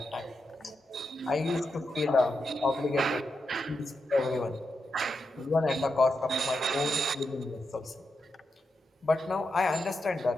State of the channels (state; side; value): normal; both; correlation 0.86